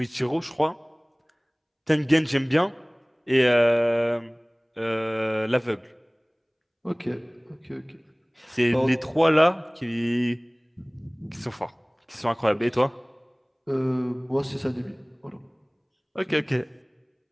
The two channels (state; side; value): identical; both; correlation 1.00